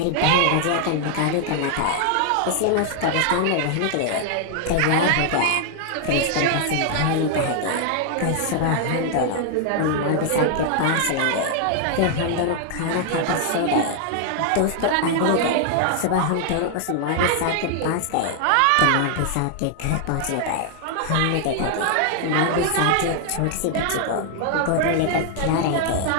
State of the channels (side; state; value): both; different; correlation 0.00